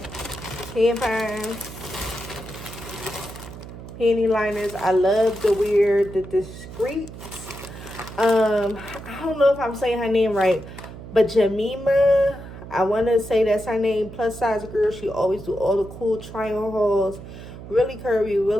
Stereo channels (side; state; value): right; noise; hum, 13 dB below the sound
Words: Tampons, panty liners. I love to wear the discreet. I don't know if I'm saying her name right, but Jamima, I want to say that's her name. Plus size girl. She always do all the cool try-on hauls. Really curvy,